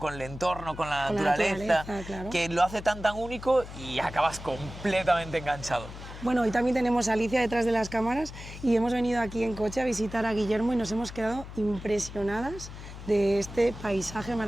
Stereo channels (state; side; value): noise; left; hum, 12 dB below the sound